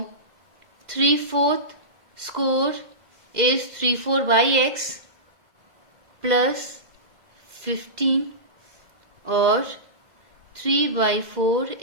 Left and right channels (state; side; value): late; left; 2.0 ms